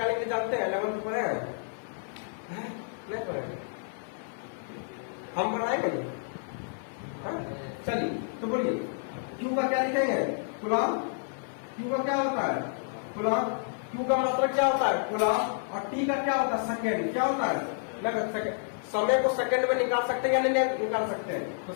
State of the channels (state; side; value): silent; right; 57 dB below the other